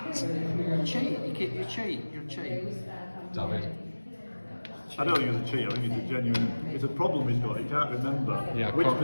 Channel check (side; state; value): both; inverted; correlation -1.00